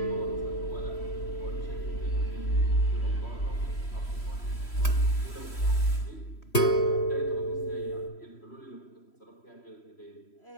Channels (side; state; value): right; late; 3.1 ms